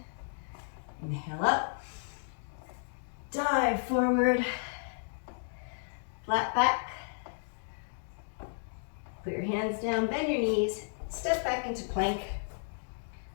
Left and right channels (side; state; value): right; silent; digital silence